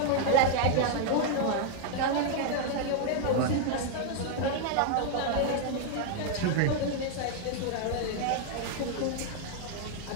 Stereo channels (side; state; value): both; different; correlation 0.00